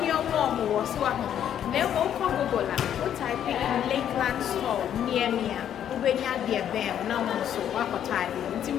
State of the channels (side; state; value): right; quieter; 9.9 dB